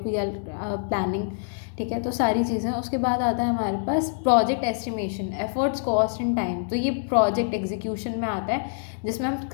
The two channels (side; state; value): right; silent; digital silence